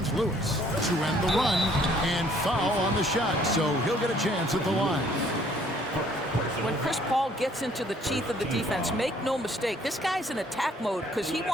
Lewis to end the run, and foul on the shot, so he'll get a chance at the line. When Chris Paul gets into the teeth of the defense, make no mistake, this guy's in attack mode because he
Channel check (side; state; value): both; normal; correlation 0.61